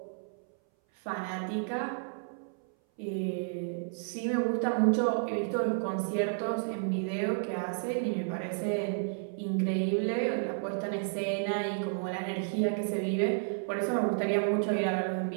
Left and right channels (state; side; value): silent; left; 57 dB below the other